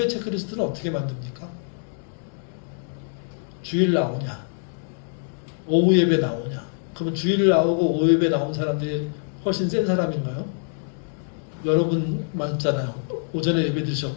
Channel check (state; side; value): silent; right; digital silence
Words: 체크리스트는 어떻게 만듭니까? 주일 나오냐? 오후 예배 나오냐? 그러면 주일 나오고 오후 예배 나온 사람들이 훨씬 센 사람인가요? 여러분만 있잖아요. 오전에 예배